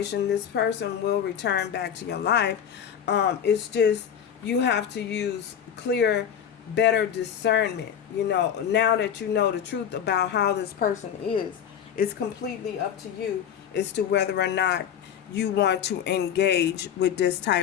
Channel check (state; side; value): quieter; right; 8.7 dB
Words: this person will return back to your life. It's just you have to use clear, better discernment. You know, now that you know the truth about how this person is, it's completely up to you as to whether or not you want to engage with this